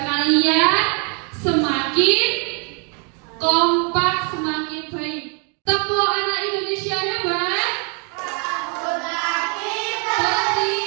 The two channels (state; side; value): quieter; left; 37.7 dB